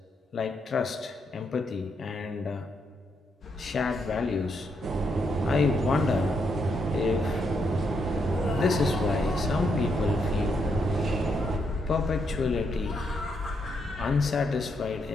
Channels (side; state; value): both; normal; correlation 0.78